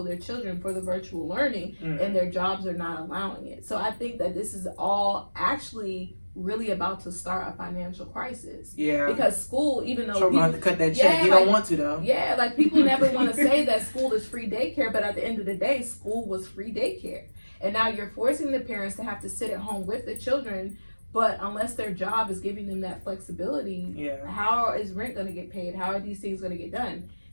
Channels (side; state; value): both; inverted; correlation -1.00